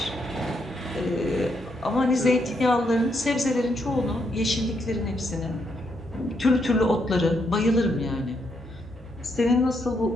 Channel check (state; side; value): normal; both; correlation 0.77